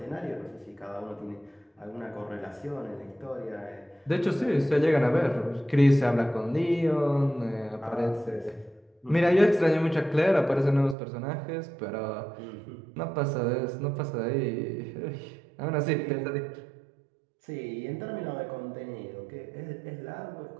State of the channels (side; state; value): left; drops out; at 11.0 s